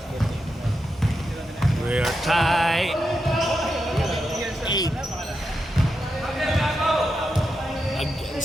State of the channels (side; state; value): both; normal; correlation 0.86